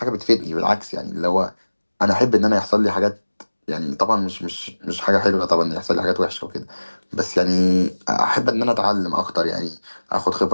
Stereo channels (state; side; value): inverted; both; correlation -1.00